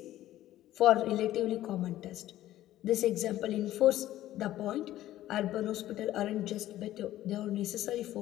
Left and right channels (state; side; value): quieter; right; 14.0 dB